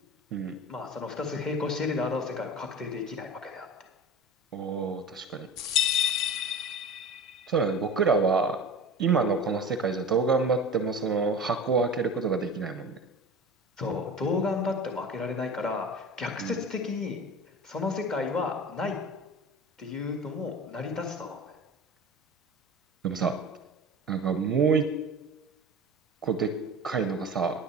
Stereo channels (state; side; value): normal; both; correlation 0.35